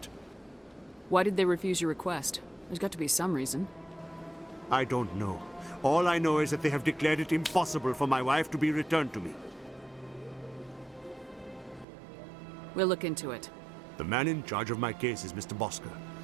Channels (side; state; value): left; drops out; at 11.9 s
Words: Why did they refuse your request? There's got to be some reason. I don't know. All I know is that they have declared it impossible for my wife to be returned to me. We'll look into it. The man in charge of my case is Mr. Bosker.